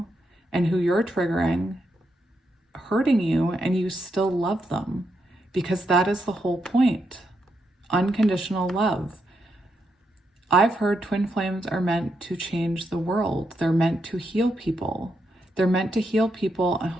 and who you're triggering, hurting you, and you still love them, because that is the whole point. Unconditional love. I've heard twin flames are meant to change the world. They're meant to heal people. They're meant to heal people.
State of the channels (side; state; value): both; normal; correlation 0.82